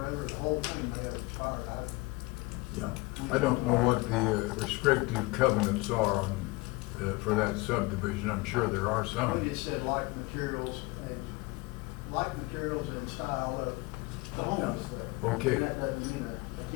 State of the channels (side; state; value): right; quieter; 23.3 dB